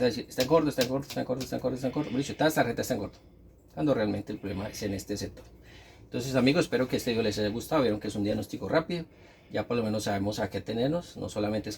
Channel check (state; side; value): identical; both; correlation 1.00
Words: vas a decir, está en corto, está en corto, está en corto, está en corto, está en corto. Por dicho, esta tarjeta está en corto, cuando realmente el problema es en este sector. Entonces amigos, espero que este video les haya gustado. Vieron que es un diagnóstico rápido, ya por lo menos sabemos a qué tenernos. No solamente